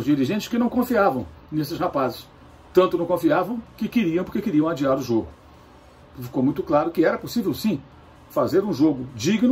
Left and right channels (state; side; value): identical; both; correlation 1.00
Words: dirigentes que não confiavam nesses rapazes. Tanto não confiavam que queriam, porque queriam adiar o jogo. Ficou muito claro que era possível, sim, fazer um jogo